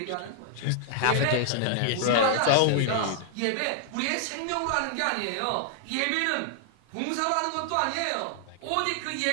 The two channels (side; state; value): both; different; correlation 0.00